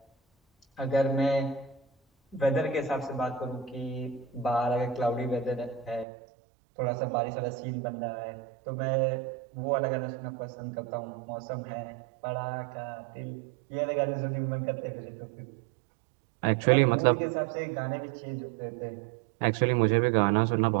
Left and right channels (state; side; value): drops out; left; at 6.1 s